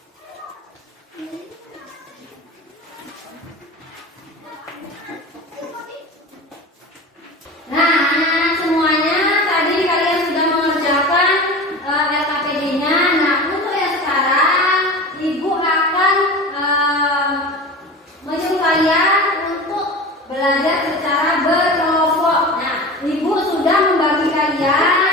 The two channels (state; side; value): normal; both; correlation 0.32